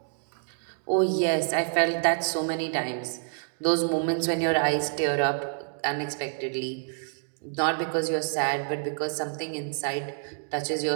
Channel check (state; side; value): silent; left; digital silence